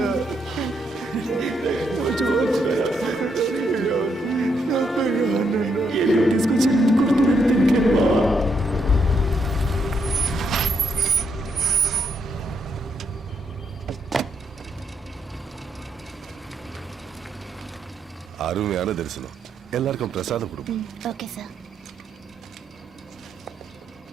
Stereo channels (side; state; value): both; normal; correlation 0.76